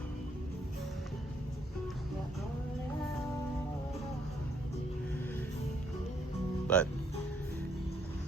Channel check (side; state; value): both; normal; correlation 0.70